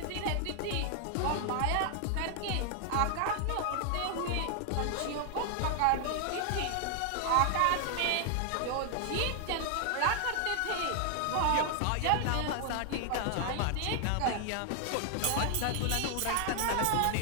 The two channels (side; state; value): both; different; correlation 0.00